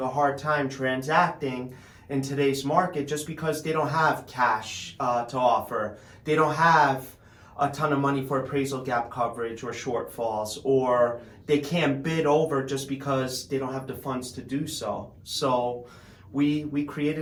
hard time transacting in today's market just because they don't have cash to offer. They don't have a ton of money for appraisal gap coverage or shortfalls, or they can't bid over just because they don't have the funds to do so. So we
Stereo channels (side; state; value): both; identical; correlation 1.00